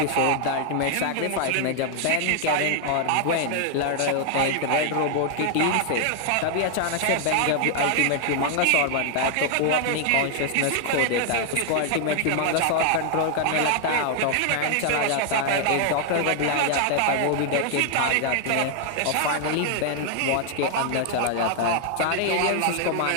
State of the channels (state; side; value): different; both; correlation 0.00